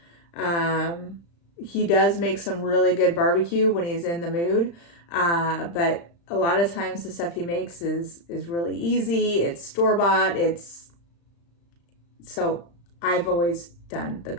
He does make some really good barbecue when he's in the mood. But a lot of times the stuff he makes is really easy. It's store-bought. So I've always done the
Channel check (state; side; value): late; right; 35 ms